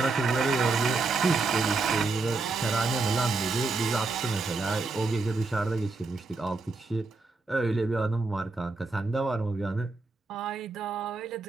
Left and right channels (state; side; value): quieter; left; 3.7 dB